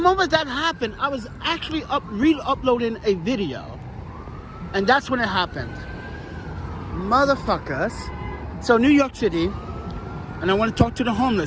that happened, I was actually re-uploading a video. And that's when it happened. Motherfuckers. So New York City, and I want to talk to the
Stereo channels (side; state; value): both; identical; correlation 1.00